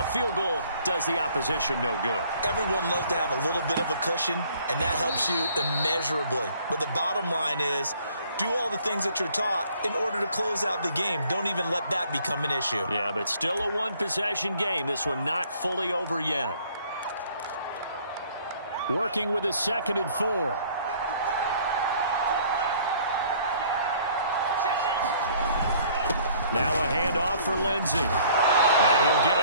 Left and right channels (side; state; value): both; inverted; correlation -0.58